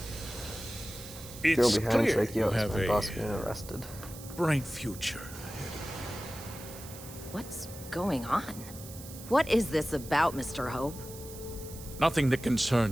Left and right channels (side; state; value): right; noise; hiss, 15 dB below the sound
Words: It's Girl behind clear like, yo, you have my boss a getting arrested. bright future. What's going on? What is this about, Mr. Hope? Nothing that